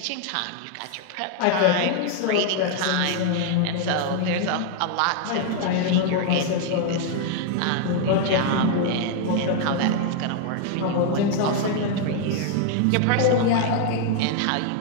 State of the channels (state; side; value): different; both; correlation 0.00